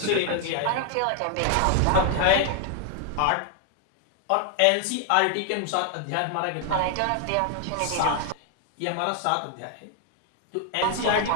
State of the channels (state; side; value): different; both; correlation 0.00